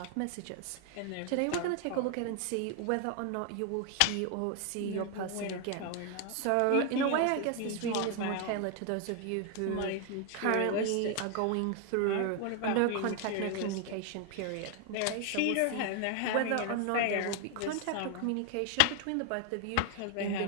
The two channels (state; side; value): different; both; correlation 0.00